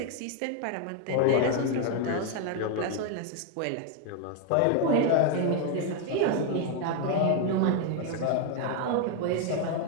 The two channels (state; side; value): different; both; correlation 0.00